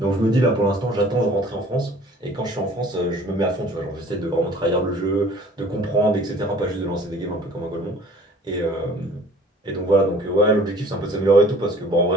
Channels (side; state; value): both; normal; correlation 0.50